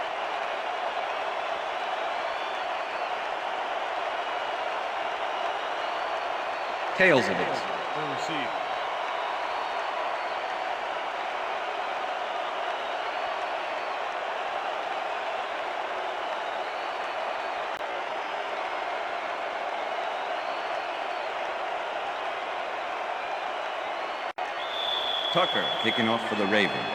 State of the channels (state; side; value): identical; both; correlation 1.00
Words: Tails it is. Tucker kicking off for the